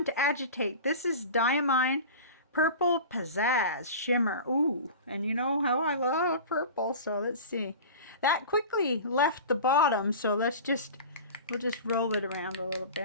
to agitate. This is Diamine Purple Pizzazz Shimmer. Ooh, and you know how I love purple, so let's see. That quickly left the bottom, so let's just we'll just roll it around a little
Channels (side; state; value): both; inverted; correlation -0.35